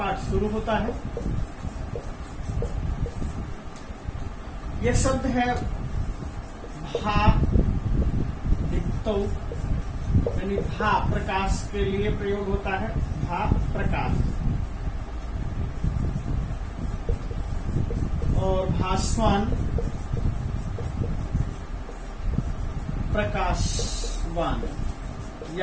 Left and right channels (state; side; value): identical; both; correlation 1.00